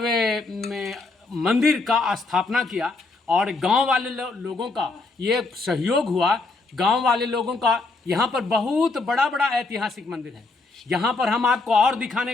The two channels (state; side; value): quieter; right; 3.6 dB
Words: मंदिर का स्थापना किया और गांव वाले लोगों का ये सहयोग हुआ। गांव वाले लोगों का यहाँ पर बहुत बड़ा ऐतिहासिक मंदिर है। यहाँ पर हम आपको और दिखाने